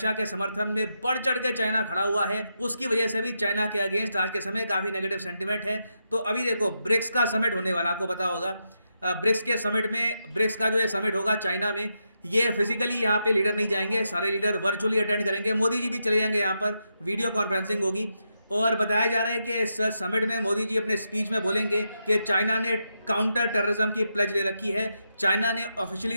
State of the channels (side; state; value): both; inverted; correlation -0.84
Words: के समर्थन में बढ़ चढ़ के चाइना खड़ा हुआ है, उसकी वजह से भी चाइना के अगेंस्ट आज के समय काफ़ी नेगेटिव सेंटिमेंट है। तो अभी देखो ब्रिक्स का समिट होने वाला, आपको पता होगा ब्रिक्स के समिट में, ब्रिक्स का जो ये समिट होगा चाइना में, ये फिजिकली यहाँ पे लीडर नहीं जाएंगे, सारे लीडर वर्चुअली अटेंड करेंगे, मोदी जी भी चले जाएंगे, यहाँ पर वीडियो कॉन्फ्रेंसिंग होगी। और बताया जा रहा है कि इस समिट में मोदी जी अपने स्पीच में बोलेंगे कि चाइना ने काउंटर टेररिज्म की प्लेज ले रखी है, चाइना ने